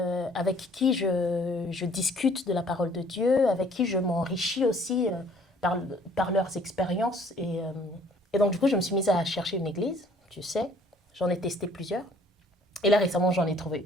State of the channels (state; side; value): normal; both; correlation 0.58